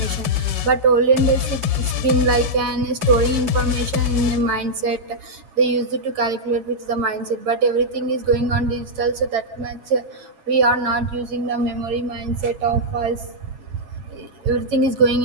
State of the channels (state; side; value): late; left; 7.3 ms